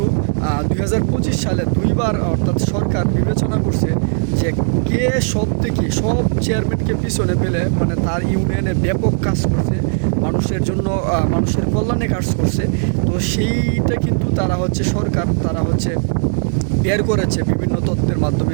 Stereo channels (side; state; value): left; silent; digital silence